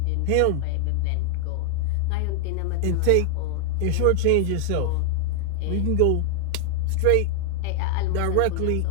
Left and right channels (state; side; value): different; both; correlation 0.00